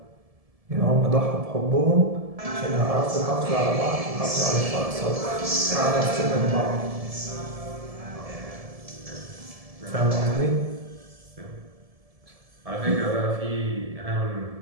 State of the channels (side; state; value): left; late; 1.7 ms